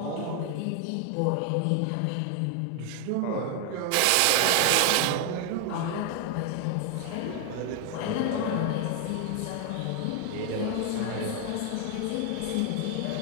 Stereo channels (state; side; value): different; both; correlation 0.00